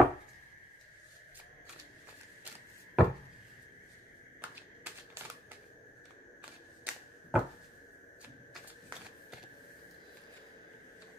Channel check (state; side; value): normal; both; correlation 0.78